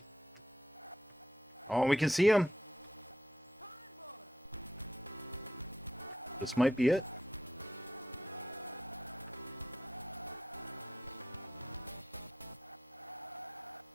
Oh, we can see him. This might be it.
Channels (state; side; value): normal; both; correlation 0.80